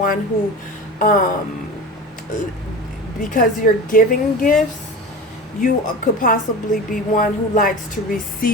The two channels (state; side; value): normal; both; correlation 0.31